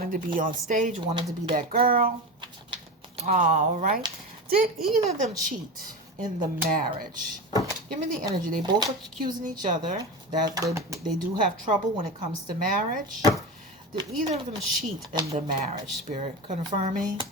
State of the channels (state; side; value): normal; both; correlation 0.24